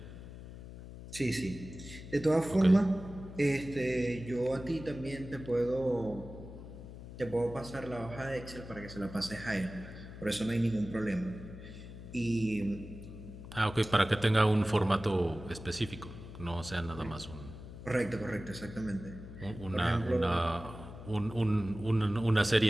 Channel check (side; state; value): left; noise; hum, 13 dB below the sound